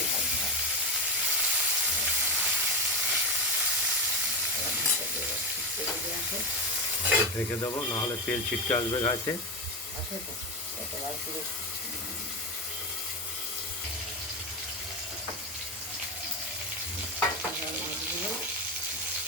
ভালো হয়, এবার ঢাকা দিয়ে ঠিক করে দিয়ে আসো। রেখে দেবো, নাহলে তেল ছিটকে আসবে গাছে। আসো তো, একেবারে পুরো এবার মাছগুলো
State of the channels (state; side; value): normal; both; correlation 0.15